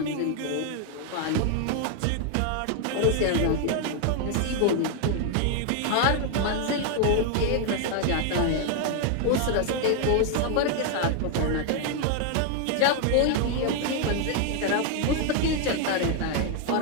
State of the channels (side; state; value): both; different; correlation 0.00